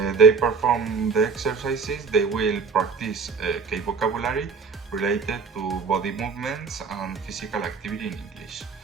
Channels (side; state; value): left; quieter; 5.1 dB